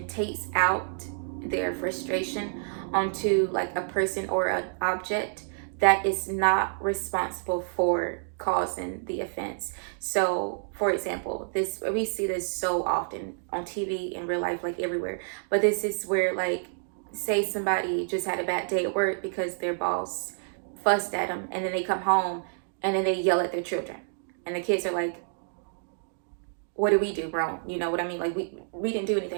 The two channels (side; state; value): left; silent; digital silence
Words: takes out their frustration onto like a person or an object that is not responsible for causing the offense. So for example, we see this so often on TV, in real life, like everywhere. But this is where, like, say somebody just had a bad day at work because their boss fussed at them, and then they come home and then they yell at their children, and the kids are like, what did we do wrong? You know what I mean? Like we didn't do